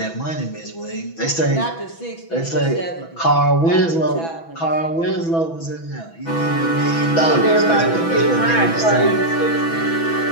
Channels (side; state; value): right; late; 6.1 ms